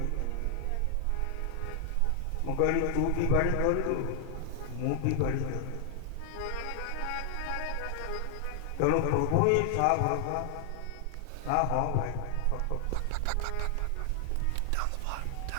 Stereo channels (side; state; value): both; different; correlation 0.00